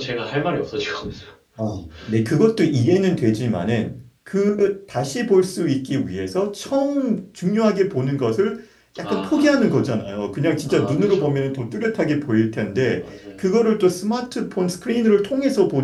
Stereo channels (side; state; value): both; identical; correlation 1.00